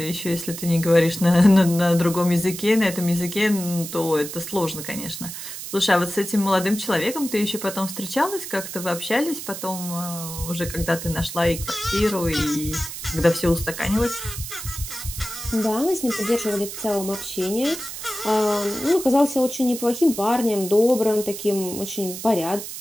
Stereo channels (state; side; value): noise; right; hiss, 9 dB below the sound